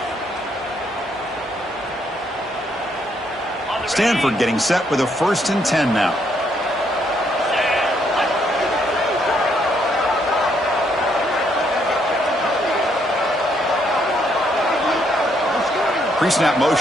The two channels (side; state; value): both; normal; correlation 0.72